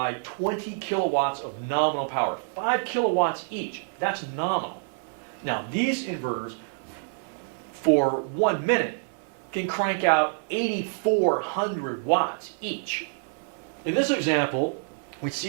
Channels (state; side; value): silent; left; digital silence